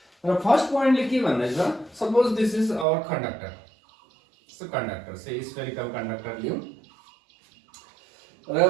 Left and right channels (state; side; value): drops out; left; at 2.9 s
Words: र फर्स्ट पोइन्टले के भन्दैछ, suppose this is our conductor. So conductor say spherical conductor लियौ र